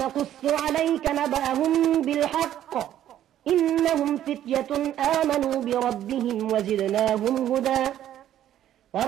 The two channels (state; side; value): quieter; left; 11.7 dB